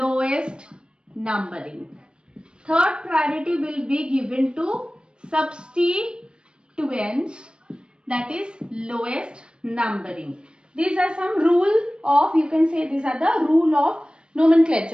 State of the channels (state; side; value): late; left; 0.055 ms